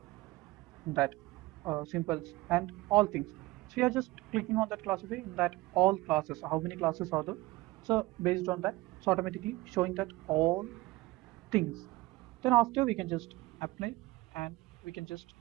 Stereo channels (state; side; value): quieter; left; 20.1 dB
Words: that symbols and all things. So we are just clicking on that classify in that all classes. How many classes are there? So based on that, it's automatically showing that all things. Then after we can just apply and we can just